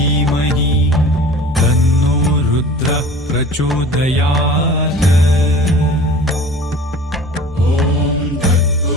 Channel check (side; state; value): both; normal; correlation 0.42